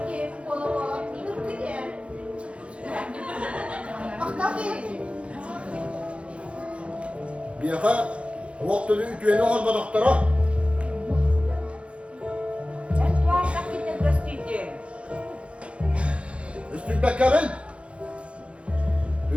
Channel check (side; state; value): left; late; 0.060 ms